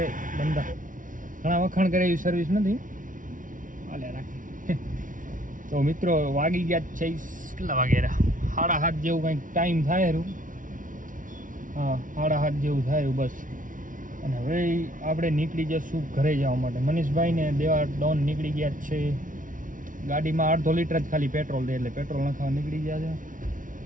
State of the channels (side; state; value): left; late; 0.38 ms